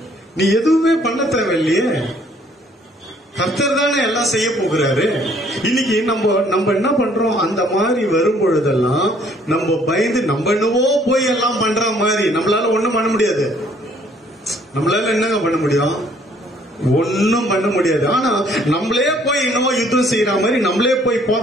நீ எதுவுமே பண்ண தேவையில்லையே. கர்த்தர் தானே எல்லாம் செய்ய போகிறாரு. இன்னைக்கு நம்ம என்ன பண்றோம்? அந்த மாதிரி வரும் பொழுதெல்லாம் நம்ம பயந்து நம்ம என்னவோ போய் எல்லாம் பண்ற மாதிரி நம்மளால ஒண்ணும் பண்ண முடியாது. நம்மளால என்னங்க பண்ண முடியும்? ஒன்னும் பண்ண முடியாது. ஆனா நம்மளே போய் என்னவோ யுத்தம் செய்யற மாதிரி, நம்மளே போய்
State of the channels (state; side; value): normal; both; correlation 0.62